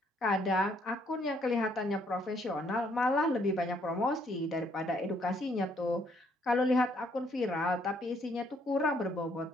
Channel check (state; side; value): normal; both; correlation 0.68